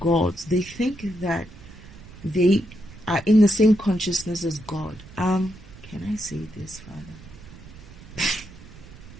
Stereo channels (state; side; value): noise; right; rumble, 18 dB below the sound